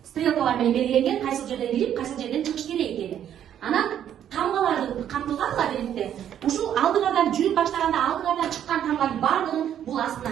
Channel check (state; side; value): quieter; left; 10.1 dB